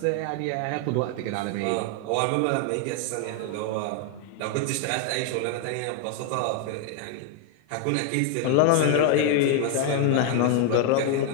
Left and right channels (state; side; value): different; both; correlation 0.00